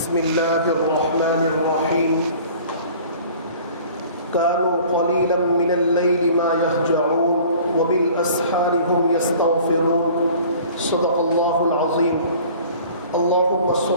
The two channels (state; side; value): inverted; both; correlation -0.47